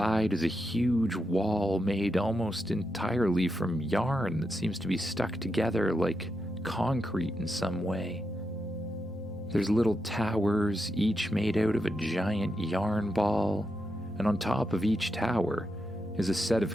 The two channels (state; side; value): normal; both; correlation 0.85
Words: is a huge wall made almost entirely from yarn that seems to be stuck together like concrete in some way. There's little towers, each made out of a giant yarn ball, and on top of each tower is a set